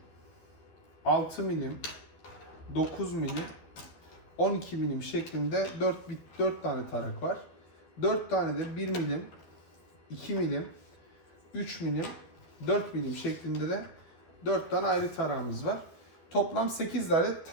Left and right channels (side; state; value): right; late; 12 ms